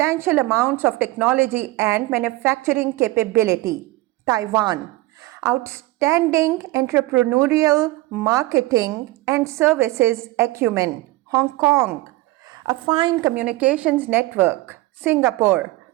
amounts of technology and manufacturing capability. Taiwan, outstanding entrepreneurial, marketing, and services acumen. Hong Kong, a fine communications network. Singapore,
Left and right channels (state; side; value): quieter; left; 19.0 dB